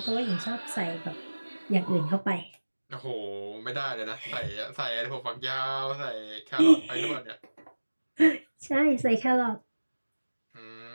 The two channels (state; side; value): inverted; both; correlation -1.00